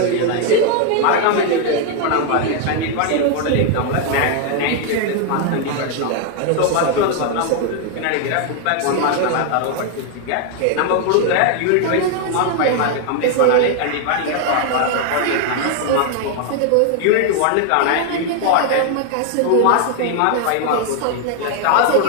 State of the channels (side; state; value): both; different; correlation 0.00